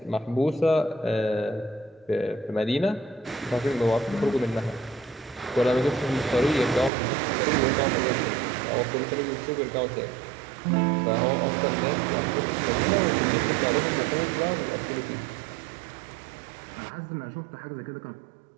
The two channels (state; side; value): drops out; left; at 6.9 s